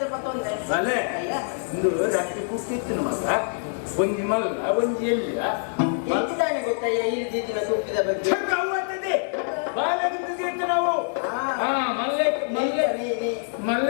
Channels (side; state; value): right; silent; digital silence